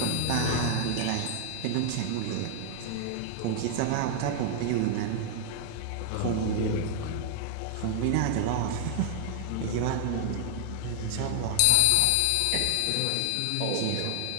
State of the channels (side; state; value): both; different; correlation 0.00